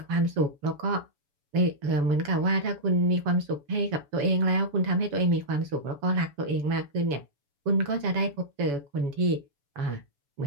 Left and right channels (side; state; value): left; late; 7.0 ms